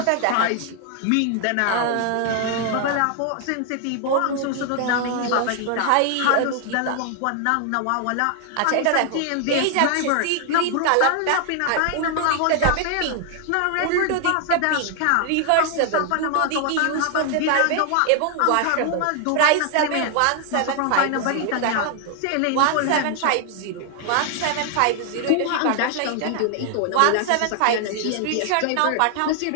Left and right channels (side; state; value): both; different; correlation 0.00